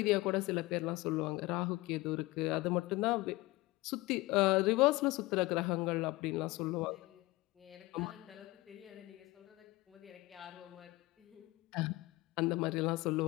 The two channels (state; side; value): quieter; right; 20.8 dB